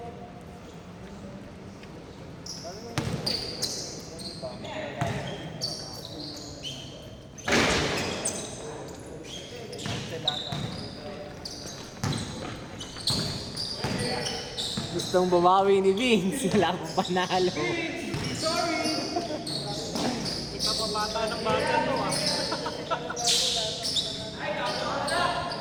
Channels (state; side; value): identical; both; correlation 1.00